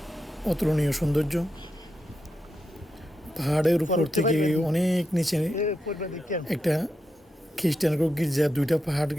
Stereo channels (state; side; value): normal; both; correlation 0.86